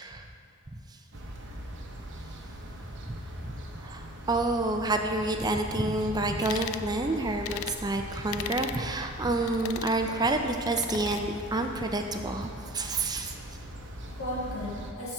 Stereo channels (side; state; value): both; normal; correlation 0.43